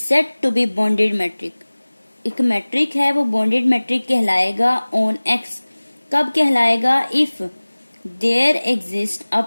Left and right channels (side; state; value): both; inverted; correlation -1.00